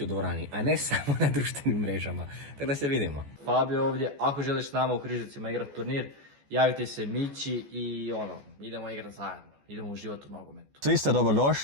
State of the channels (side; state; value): left; late; 14 ms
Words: u dvorani, a ne samo na društvenim mrežama. Tako da se vidimo. Fabio ovdje, ako želiš s nama u Križevcima igrati turnir, javite se Mići i idemo igrati zajedno. Idemo uživati u nogometu. Svi ste